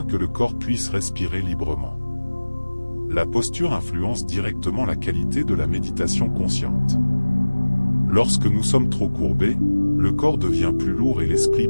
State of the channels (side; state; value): both; inverted; correlation -1.00